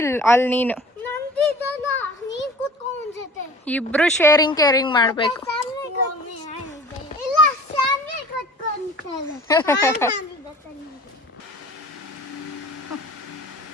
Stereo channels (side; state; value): both; normal; correlation 0.44